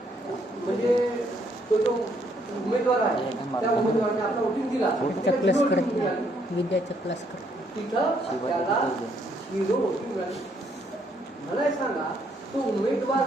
म्हणजे तो जो उमेदवार आहे त्या उमेदवाराने आपला वोटिंग दिला, विद्याचा क्लास कर तिथं त्याला 0 वोटिंग मिळाली. मला सांगा तो उमेदवार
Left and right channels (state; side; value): normal; both; correlation 0.70